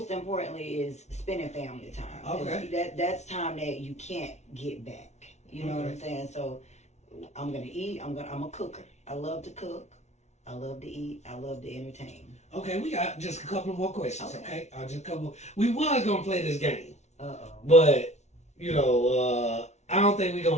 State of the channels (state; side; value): late; right; 0.32 ms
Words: importantly is spending family time. Okay. That's time that you can't get back. You know what I'm saying? So I'm gonna eat. I'm a cooker. I love to cook. I love to eat. I love to entertain. Okay, we got just a couple more questions. Okay, just a couple. We was gonna play this game, but I don't think we're